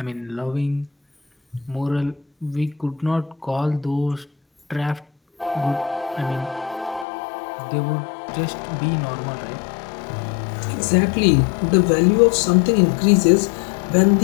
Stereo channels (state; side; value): drops out; right; at 7.1 s